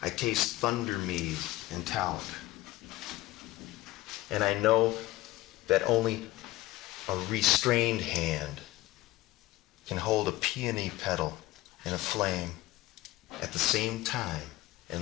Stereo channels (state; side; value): quieter; right; 17.4 dB